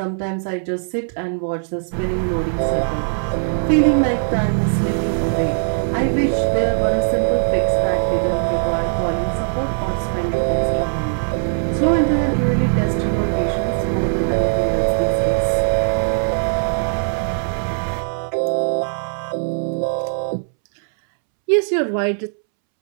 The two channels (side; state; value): left; silent; 66 dB below the other